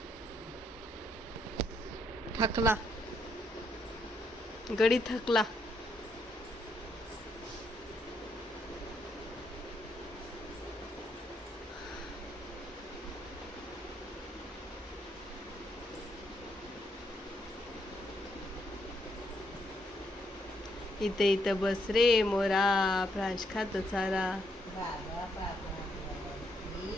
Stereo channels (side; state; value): both; normal; correlation 0.75